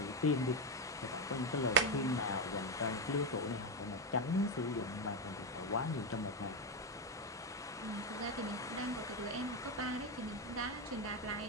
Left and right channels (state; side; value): normal; both; correlation 0.09